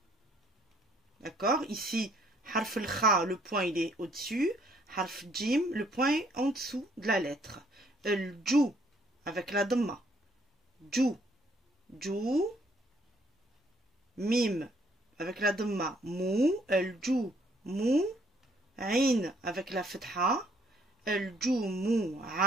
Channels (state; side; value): normal; both; correlation 0.65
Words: D'accord, ici harf al-kha, le point il est au-dessus, harf jim, le point est en dessous de la lettre. El-jou avec la dhamma, jou, mim avec la dhamma, mou, el-jou, mou, ain avec la fetha, el-jou, mou,